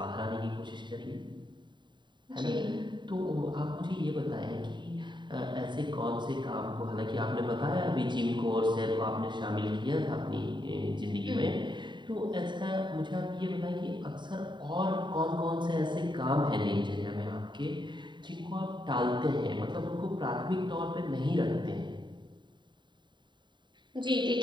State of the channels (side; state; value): left; late; 0.23 ms